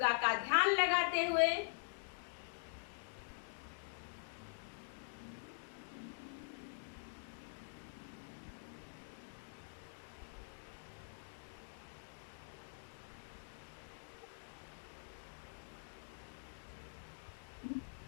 का ध्यान लगाते हुए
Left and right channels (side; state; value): right; silent; digital silence